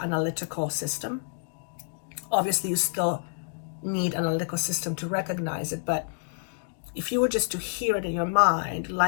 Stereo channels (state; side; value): silent; right; digital silence